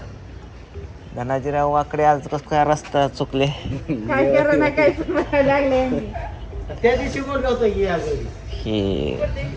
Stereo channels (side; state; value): both; identical; correlation 1.00